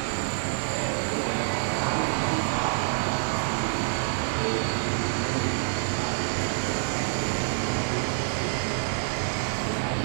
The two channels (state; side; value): silent; left; 60 dB below the other